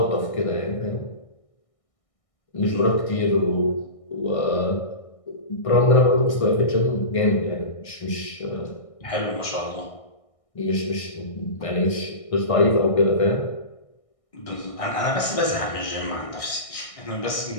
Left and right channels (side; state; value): right; late; 1.6 ms